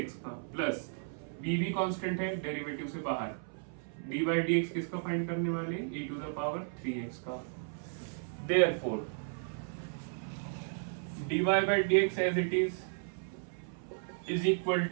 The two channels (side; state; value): left; silent; 55 dB below the other